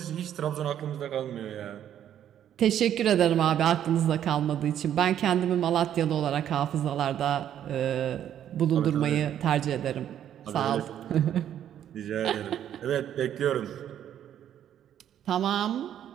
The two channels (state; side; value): quieter; left; 10.4 dB